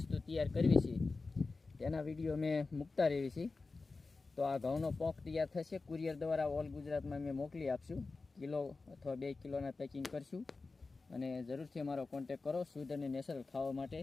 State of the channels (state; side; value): quieter; right; 3.9 dB